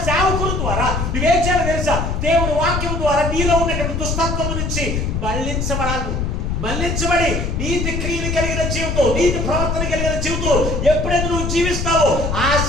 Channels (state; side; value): noise; left; rumble, 1 dB below the sound